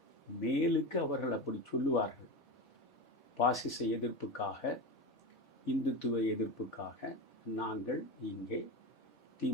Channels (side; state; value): both; normal; correlation 0.22